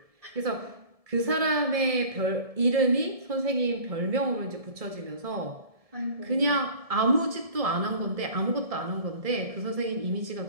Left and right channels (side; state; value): left; late; 1.7 ms